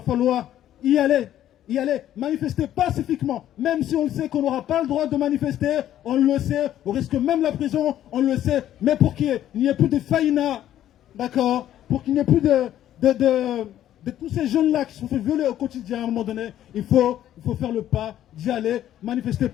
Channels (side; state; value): right; quieter; 11.9 dB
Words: falloir y aller, manifester pacifiquement, même si on le sait qu'on n'aura pas le droit de manifester, on le sait, on risque même la prison, on le sait, mais pour qu'il n'y ait plus de faïna, d'accord, pour qu'il n'y ait plus de tous ces jeunes-là qui se sont fait violer au quotidien, à un moment donné, il faut faire le pas d'y aller, manifester